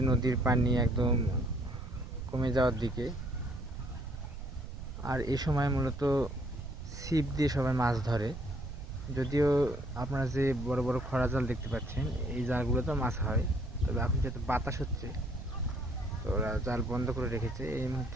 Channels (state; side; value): noise; right; rumble, 9 dB below the sound